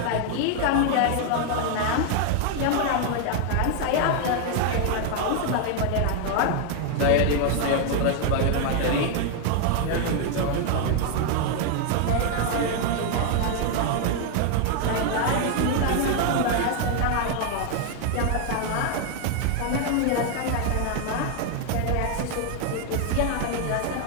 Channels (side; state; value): both; different; correlation 0.00